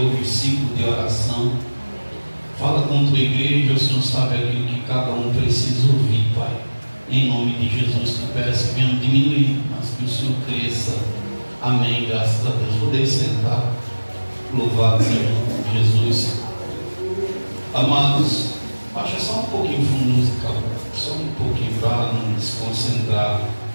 ciclo de oração. Fala com tua igreja, o Senhor sabe aquilo que cada um precisa ouvir, Pai. Em nome de Jesus, que peço que venham diminuir, mas que o Senhor cresça. Amém, graças a Deus. Podem sentar. Louvado seja Jesus. Amados, baixa só um pouquinho o fundo musical, só um pouquinho para não desconcentrar.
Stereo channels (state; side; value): inverted; both; correlation -1.00